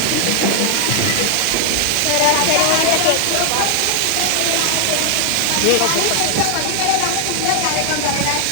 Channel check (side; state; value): both; different; correlation 0.00